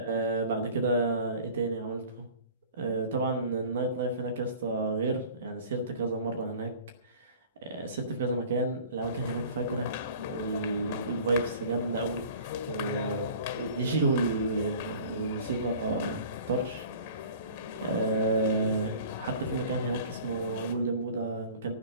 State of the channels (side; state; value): both; inverted; correlation -0.45